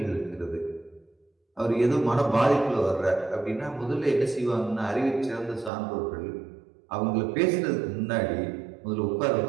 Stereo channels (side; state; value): left; drops out; at 5.7 s